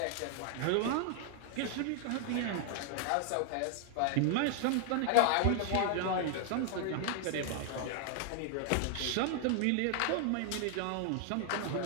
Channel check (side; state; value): both; different; correlation 0.00